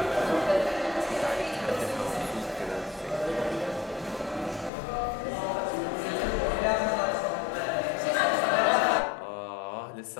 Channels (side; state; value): right; drops out; at 4.7 s